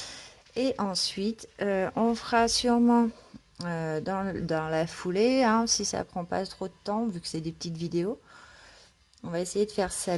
Et ensuite, on fera sûrement dans la foulée, hein, si ça prend pas trop de temps, vu que c'est des petites vidéos. On va essayer de faire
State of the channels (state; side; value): identical; both; correlation 1.00